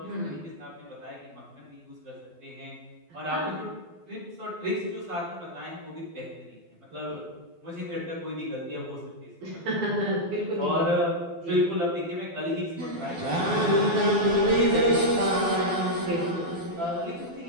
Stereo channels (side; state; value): left; late; 12 ms